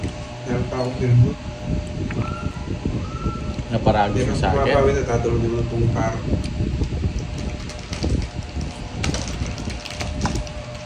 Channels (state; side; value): identical; both; correlation 1.00